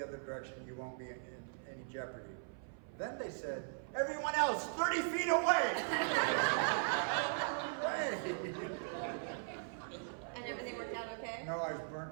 other direction. You won't be in any jeopardy. Then they said, everyone else, 30 feet away! And everything worked out okay? No, I was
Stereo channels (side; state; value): left; silent; 52 dB below the other